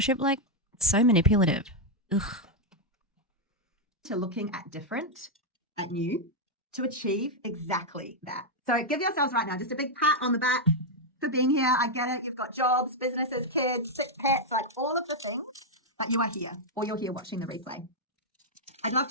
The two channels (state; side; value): normal; both; correlation -0.01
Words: Like, it's so manipulative. Ugh. To looking at different, at you, to achieve exactly that. So give yourselves right now just a big pat on the back for being here. I get it. You've got jobs, businesses, kids, sick pets, like all of the things, but you are here, or you're here watching the replay. I'd love